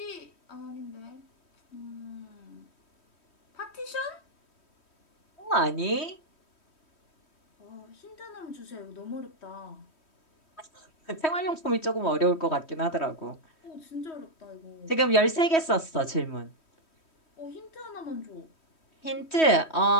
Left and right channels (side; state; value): right; late; 3.1 ms